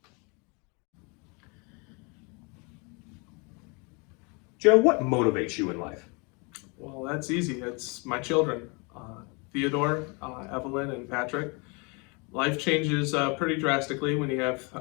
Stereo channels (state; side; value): quieter; right; 31.3 dB